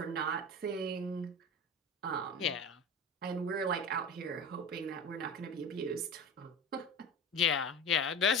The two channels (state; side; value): normal; both; correlation 0.30